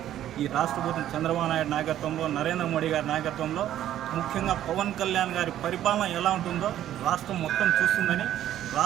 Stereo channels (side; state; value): left; quieter; 12.0 dB